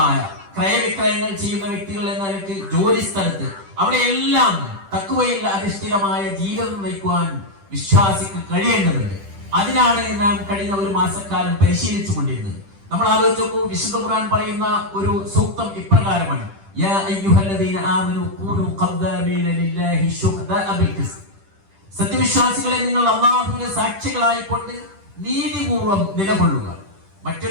ക്രയവിക്രയങ്ങൾ ചെയ്യുന്ന വ്യക്തികൾ എന്ന നിലക്ക്, ജോലി സ്ഥലത്ത്, അവിടെയെല്ലാം തഖ്വയിൽ അധിഷ്ഠിതമായ ജീവിതം നയിക്കുവാൻ വിശ്വാസിക്ക് കഴിയേണ്ടതുണ്ട്. അതിനാണ് നാം കഴിഞ്ഞ ഒരു മാസക്കാലം പരിശീലിച്ചു കൊണ്ടിരുന്നത്. നമ്മൾ ആലോചിച്ച് നോക്കൂ, വിശുദ്ധ ഖുർആൻ പറയുന്ന ഒരു സൂക്തം ഇപ്രകാരമാണ്: യാ അയ്യുഹല്ലദീന ആമനൂ കൂനൂ ഖദ്ദാമീന ലില്ലാഹി ശുഹദാഅ ബിൽ ഖിസ്ത്. സത്യവിശ്വാസികളെ, നിങ്ങൾ അല്ലാഹുവിന്റെ സാക്ഷികളായിക്കൊണ്ട് നീതിപൂർവം നിലകൊള്ളുക.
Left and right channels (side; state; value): left; late; 10 ms